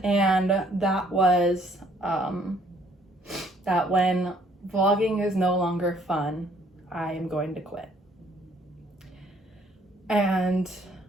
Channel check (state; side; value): normal; both; correlation 0.63